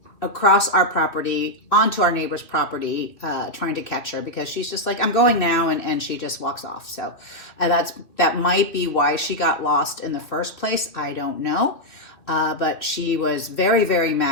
across our property, onto our neighbor's property, trying to catch her, because she's just like, I'm going now, and she just walks off. So that might be why she got lost in the first place. I don't know. But she was very, very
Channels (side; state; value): right; late; 3.1 ms